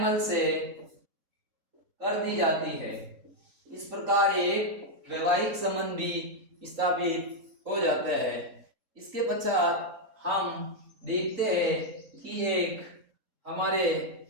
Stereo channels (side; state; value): left; late; 3.9 ms